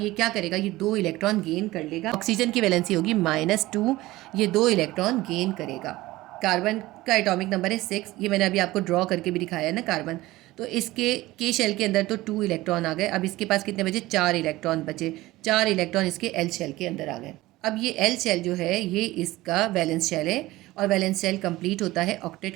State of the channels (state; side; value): quieter; left; 18.2 dB